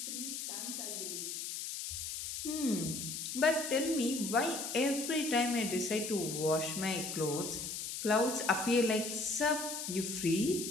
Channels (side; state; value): left; noise; hiss, 5 dB below the sound